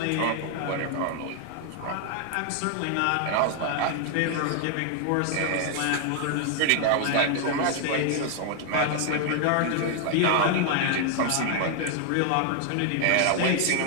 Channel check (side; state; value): both; different; correlation 0.00